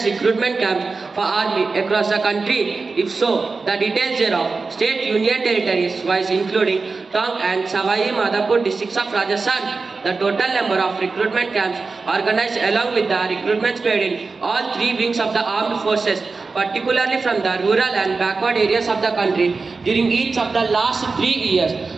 recruitment camps for army across the country. If so, the details thereof, state union territories wise including Tong and Savai Madhapur districts of Rajasthan, the total number of recruitment camps organized along with the recruitments paid in all three wings of the armed forces, particularly from the rural and backward areas of the country during each of the last 3 years,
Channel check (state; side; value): quieter; left; 4.2 dB